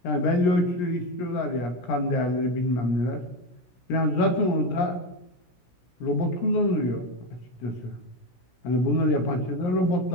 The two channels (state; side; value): late; right; 16 ms